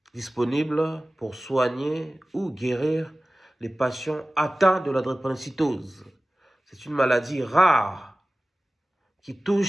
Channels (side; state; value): both; normal; correlation 0.97